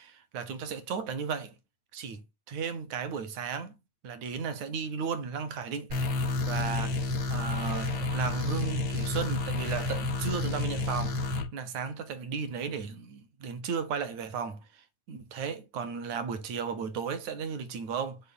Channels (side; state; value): left; late; 9.0 ms